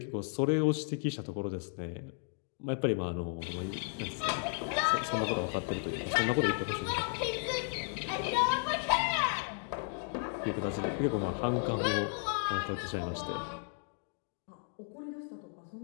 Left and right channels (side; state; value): right; silent; 55 dB below the other